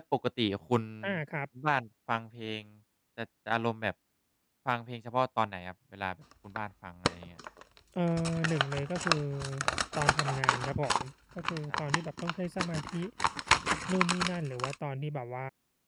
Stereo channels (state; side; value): identical; both; correlation 1.00